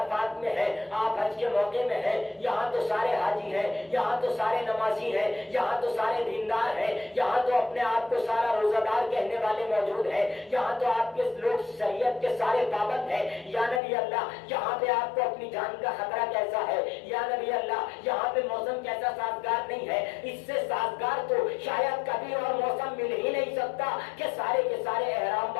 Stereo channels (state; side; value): drops out; right; at 13.8 s